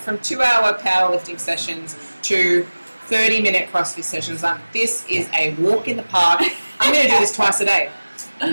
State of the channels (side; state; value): both; inverted; correlation -1.00